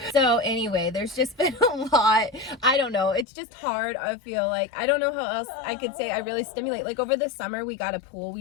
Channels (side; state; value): right; drops out; at 3.2 s